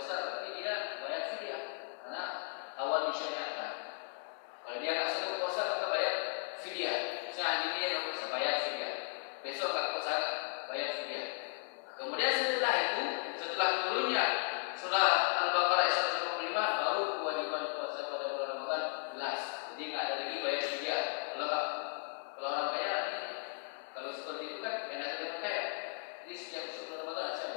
Kemudian setelah itu, setelah turunnya surah Al-Baqarah ayat 155, baru kewajiban puasa pada bulan Ramadan jelas. Jadi nggak ada lagi bayar fidyah. Kalau orang kaya, kalau seperti itu kan enak ada orang kaya. Jadi setiap bulan Ramadan asal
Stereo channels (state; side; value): silent; right; 54 dB below the other